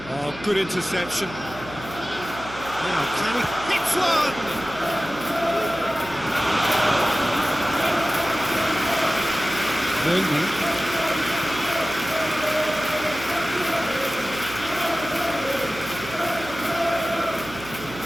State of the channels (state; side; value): noise; right; hum, 17 dB below the sound